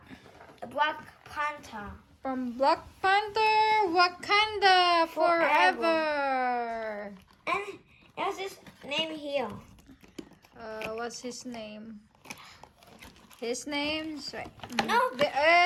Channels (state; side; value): identical; both; correlation 1.00